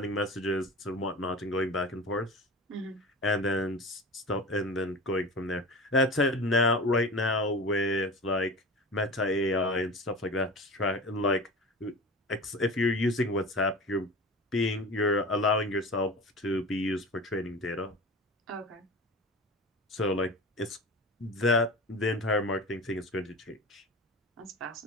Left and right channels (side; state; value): both; normal; correlation 0.33